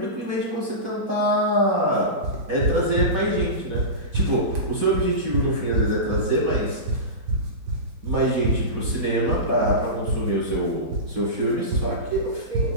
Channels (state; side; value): late; left; 4.1 ms